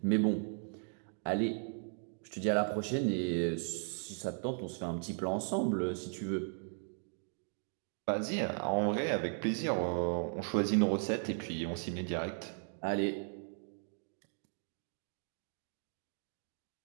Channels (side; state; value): left; silent; 53 dB below the other